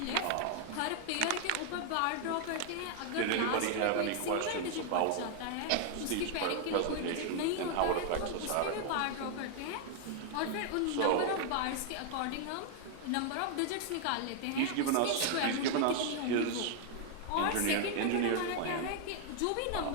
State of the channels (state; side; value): different; both; correlation 0.00